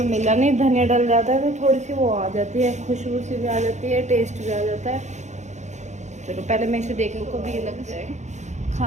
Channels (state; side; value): late; left; 0.34 ms